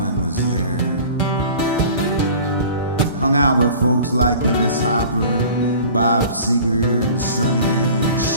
was there. Hung out with folks like Dennis Hopper, Bob Seger, and Sonny and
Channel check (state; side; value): inverted; both; correlation -0.44